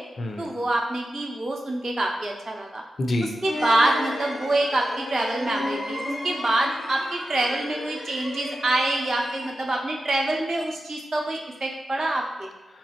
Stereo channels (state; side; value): normal; both; correlation 0.92